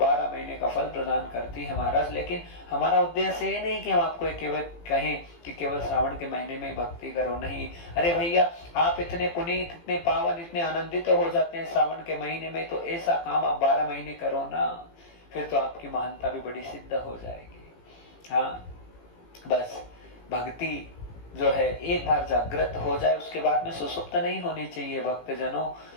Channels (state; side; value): late; right; 18 ms